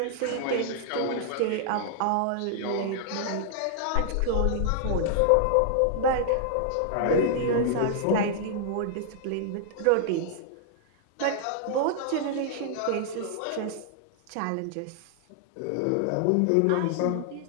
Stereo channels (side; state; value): both; different; correlation -0.01